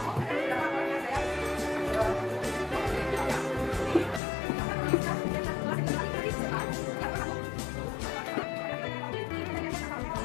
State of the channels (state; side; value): drops out; right; at 4.2 s